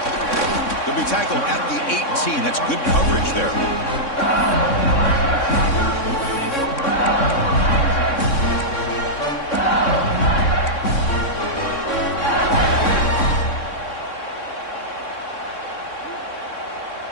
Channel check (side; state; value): right; late; 3.6 ms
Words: He'll be tackled at the 18. That's good coverage there.